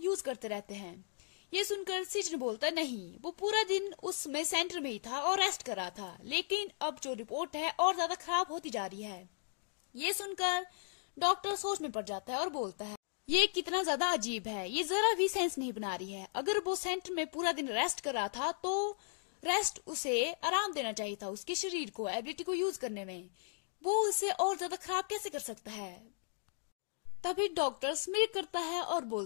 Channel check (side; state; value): right; silent; digital silence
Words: करते रहते हैं। ये सुनकर सीजन बोलता है, नहीं, वो पूरा दिन उसमें सेंटर में ही था और रेस्ट कर रहा था, लेकिन अब जो रिपोर्ट है और ज्यादा खराब होती जा रही है। ये सुनकर डॉक्टर सोच में पड़ जाता है और बोलता है, ये कितना ज्यादा अजीब है, ये जरा भी सेंस नहीं बना रही है। अगर वो सेंटर में पूरा दिन रेस्ट कर रहा था तो रेस्ट उसे आराम देना चाहिए था, उसके शरीर को एबिलिटी को यूज करने में। वो उसे और ज्यादा खराब कैसे कर सकता है? तभी डॉक्टर स्मिर करता है और